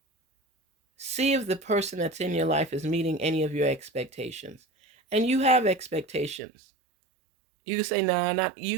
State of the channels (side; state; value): left; drops out; at 6.4 s